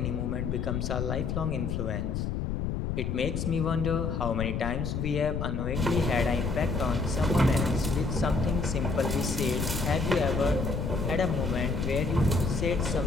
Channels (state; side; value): noise; left; rumble, 1 dB below the sound